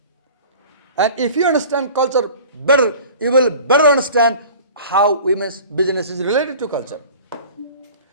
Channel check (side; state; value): both; inverted; correlation -0.43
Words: And if you understand culture better, you will better understand how women's business is related to culture.